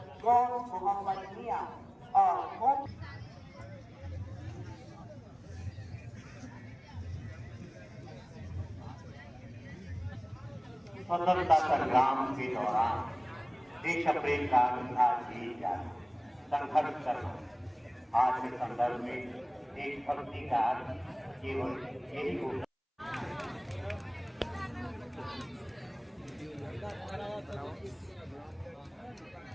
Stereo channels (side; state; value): both; identical; correlation 1.00